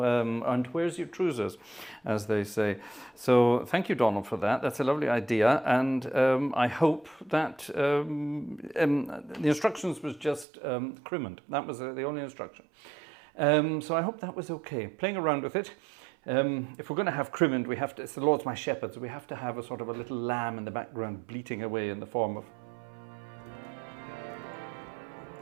and where's your trousers, as they say. So thank you, Donald, for that. That's a lovely idea. And I hope that the instructions was just crimond. That was the only instruction. So I hope that was okay. Playing around with it. If we're going to have crimond, we have to, it's the Lord's my shepherd, so we have to have a sort of a little lamb in the background bleating away in the form of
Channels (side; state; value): left; drops out; at 10.5 s